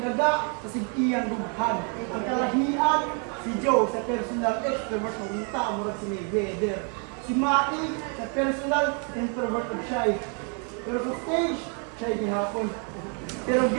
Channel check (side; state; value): left; quieter; 39.3 dB